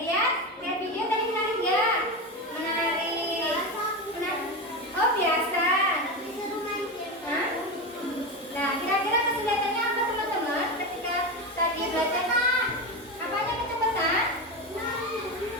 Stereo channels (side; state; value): both; normal; correlation 0.18